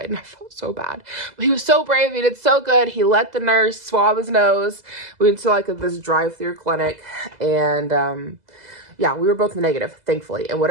and I felt so bad. But he was so brave. He did so good. He let the nurse swab his nose. We went to like this drive-through clinic, and yeah, we were both negative, thankfully. And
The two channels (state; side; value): late; left; 2.0 ms